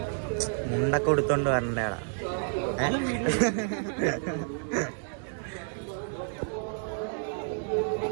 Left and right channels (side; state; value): left; silent; 58 dB below the other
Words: മുണ്ടൊക്കെ കൊടുത്തോണ്ട് വരണ്ടേടാ.